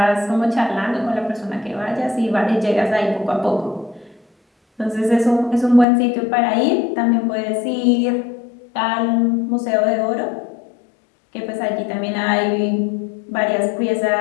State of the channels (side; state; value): right; drops out; at 5.9 s